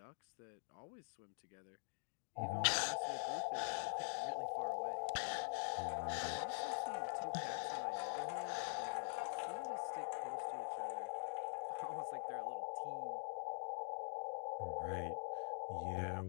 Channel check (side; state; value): right; silent; digital silence